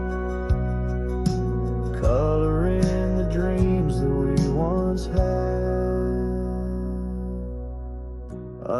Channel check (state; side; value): identical; both; correlation 1.00